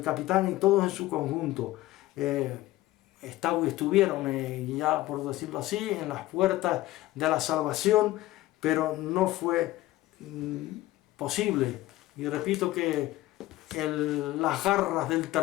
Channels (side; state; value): right; quieter; 16.7 dB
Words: capitán y todos en su conjunto. Estuvieron, ya por decirlo así, en las puertas de la salvación, pero no fue posible. Y repito que las garras del